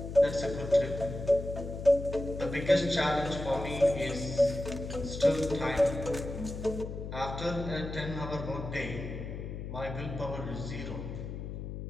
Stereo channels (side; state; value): left; noise; hum, 7 dB below the sound